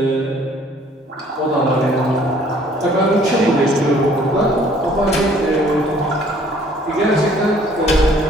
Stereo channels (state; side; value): normal; both; correlation 0.58